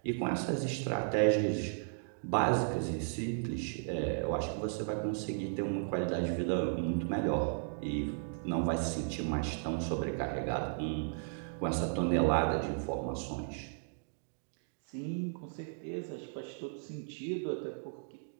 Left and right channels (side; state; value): left; silent; digital silence